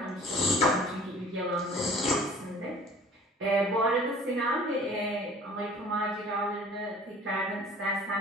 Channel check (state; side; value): normal; both; correlation 0.48